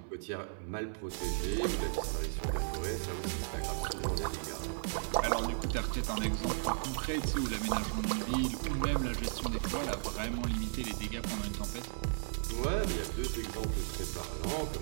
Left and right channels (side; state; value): left; silent; 54 dB below the other